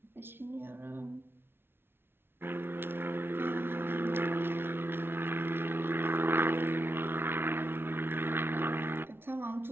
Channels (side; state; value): left; late; 0.11 ms